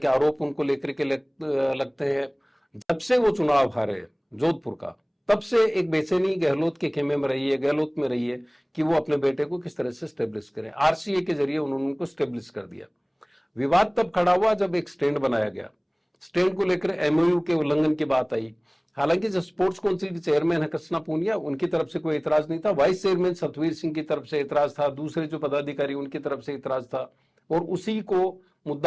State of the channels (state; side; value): identical; both; correlation 1.00